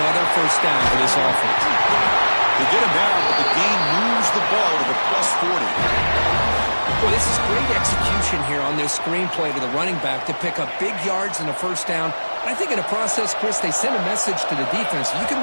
first down for this offense. They get him down, but the game moves the ball to the +40. Well, this is great execution here on this screenplay to the running back to pick up big yards and a first down. I think in the process, Chris, they send a message to the defense. You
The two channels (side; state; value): both; inverted; correlation -1.00